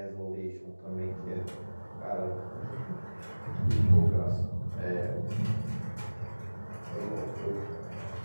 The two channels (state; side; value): inverted; both; correlation -1.00